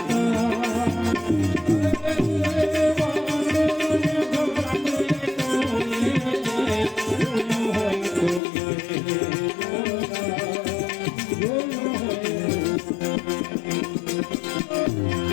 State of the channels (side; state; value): right; drops out; at 8.4 s